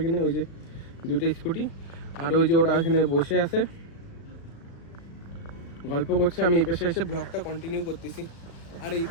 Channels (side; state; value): right; late; 35 ms